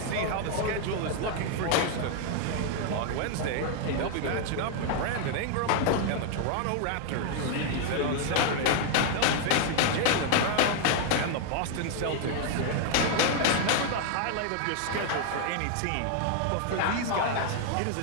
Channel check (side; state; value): both; different; correlation 0.00